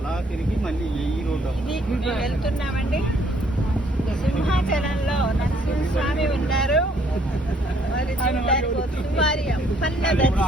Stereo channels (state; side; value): normal; both; correlation 0.65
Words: వెళ్తున్నామండి. సింహాచలంలో నరసింహస్వామి ఉన్నారు. మరి చూడడానికి వారి అప్పన్న